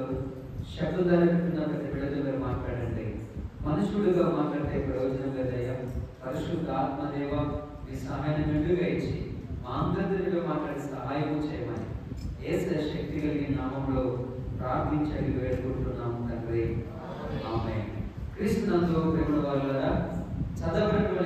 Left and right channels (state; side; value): identical; both; correlation 1.00